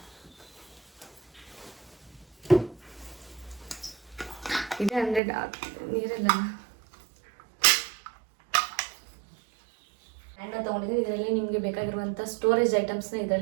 ಇದೆ 100 ನೀರೆಲ್ಲ ಹ್ಯಾಂಡ್ನ ತೊಗೊಂಡಿದ್ದೀನಿ. ಇದರಲ್ಲಿ ನಿಮಗೆ ಬೇಕಾಗಿರುವಂಥ ಸ್ಟೋರೇಜ್ ಐಟಮ್ಸ್ನ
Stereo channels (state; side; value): drops out; left; at 5.2 s